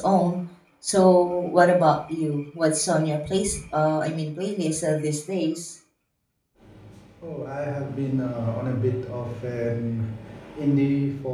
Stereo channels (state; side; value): identical; both; correlation 1.00